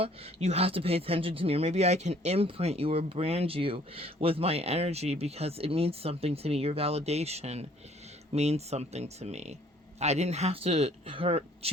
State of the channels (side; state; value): both; normal; correlation 0.59